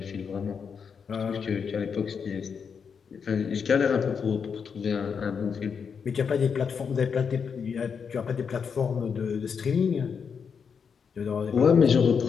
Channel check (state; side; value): quieter; right; 6.4 dB